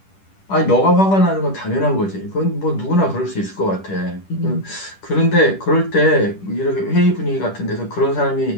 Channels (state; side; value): late; right; 10 ms